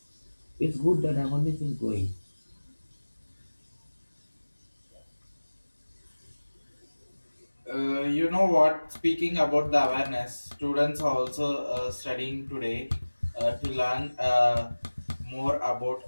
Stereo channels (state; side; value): inverted; both; correlation -1.00